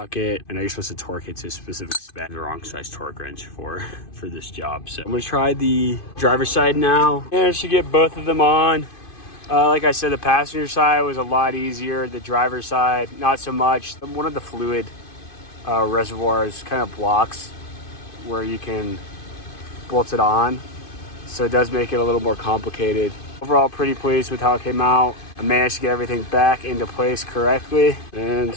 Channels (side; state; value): right; late; 2.5 ms